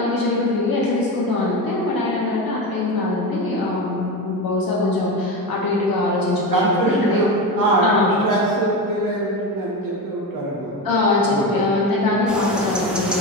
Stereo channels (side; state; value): both; normal; correlation 0.20